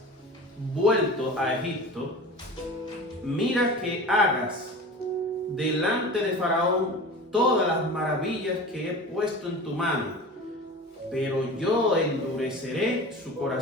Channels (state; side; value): normal; both; correlation 0.35